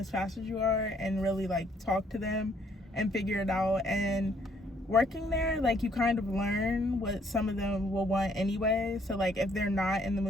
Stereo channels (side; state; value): both; normal; correlation 0.66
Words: fast as you are and really like talk to them and figure it out. And working there, like you kind of learn what some of them will want anyway. So like if they're not in the